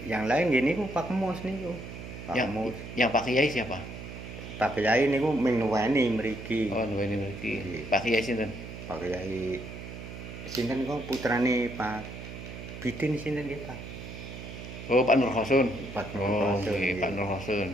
Yang lain nggih niku Pak Mus niku. Yang Pak Kiai siapa? Pak Kiai niku ming nuweni mriki. Oh, nuweni mriki. Pak Kiai sinten? Pak Kiai sinten kok putrane Pak Bidin sinten nggih Pak? Oh, Pak Nur Hosun. Pak Nur Oh, Hosun, okay. Pak Nur Hosun,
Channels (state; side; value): noise; right; hum, 11 dB below the sound